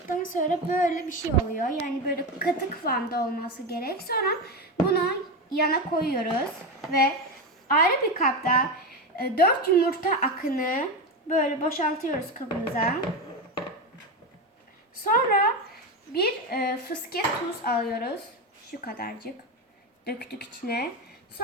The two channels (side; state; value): both; normal; correlation 0.17